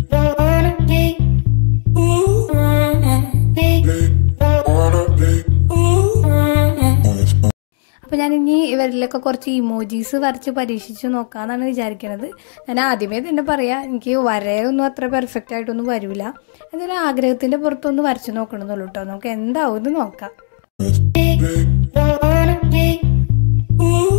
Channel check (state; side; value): silent; right; digital silence